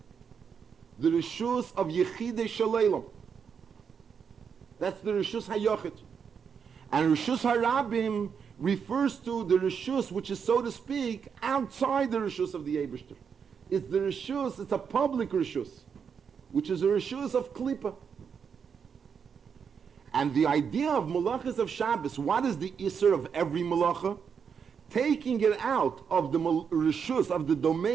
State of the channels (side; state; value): left; quieter; 6.7 dB